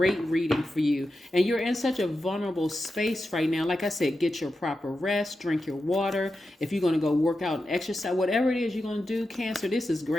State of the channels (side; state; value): both; normal; correlation 0.90